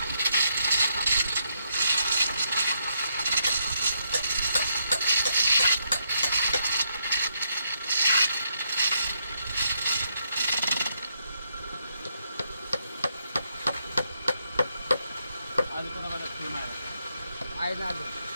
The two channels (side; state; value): both; inverted; correlation -0.77